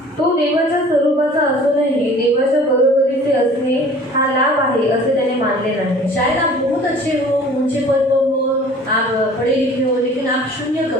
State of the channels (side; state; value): both; normal; correlation 0.48